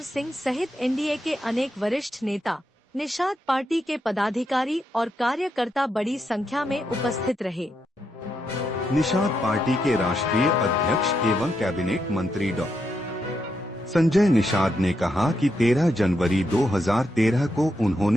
सिंह सहित एनडीए के अनेक वरिष्ठ नेता, निषाद पार्टी के पदाधिकारी और कार्यकर्ता बड़ी संख्या में उपस्थित रहे। निषाद पार्टी के राष्ट्रीय अध्यक्ष एवं कैबिनेट मंत्री डॉ संजय निषाद ने कहा कि 13 जनवरी 2013 को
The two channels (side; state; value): both; normal; correlation 0.82